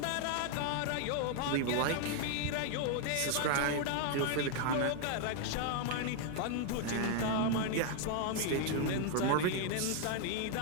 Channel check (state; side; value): different; both; correlation 0.00